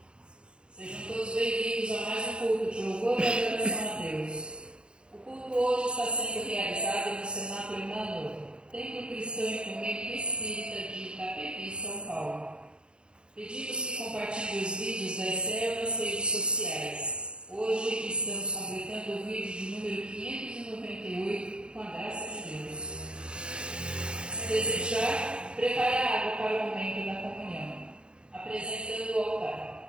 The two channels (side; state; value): left; late; 0.053 ms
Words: Sejam todos bem-vindos a mais um culto de louvor e adoração a Deus. O culto hoje está sendo realizado no Cenáculo Emmanuel, Templo Cristão Ecumênico Espírita de Itapevi, São Paulo. Pedimos que compartilhem os vídeos da ECEL nas redes sociais. Hoje estamos completando o vídeo de número 598, com a graça de Deus. Se desejar, prepare a água para o momento da comunhão, apresentando o